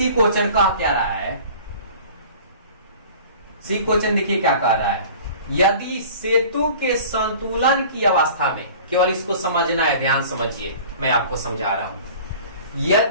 क्वेश्चन कह क्या रहा है? C क्वेश्चन देखिए क्या कह रहा है, यदि सेतु के संतुलन की अवस्था में, केवल इसको समझना है, ध्यान समझिए, मैं आपको समझा रहा हूं।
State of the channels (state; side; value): inverted; both; correlation -0.44